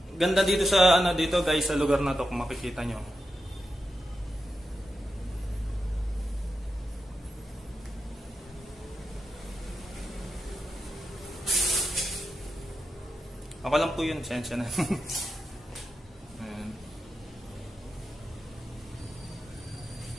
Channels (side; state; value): both; normal; correlation 0.88